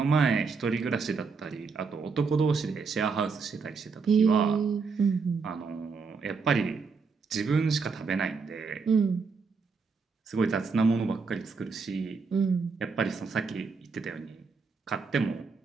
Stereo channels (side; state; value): left; quieter; 4.9 dB